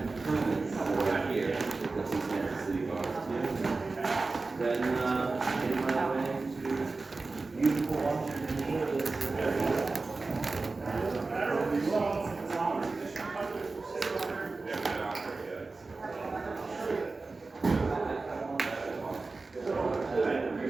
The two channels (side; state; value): left; quieter; 3.7 dB